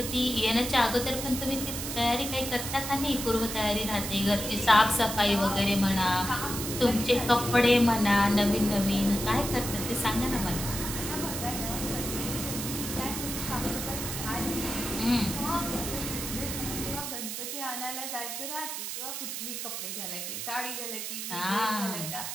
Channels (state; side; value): noise; right; hiss, 5 dB below the sound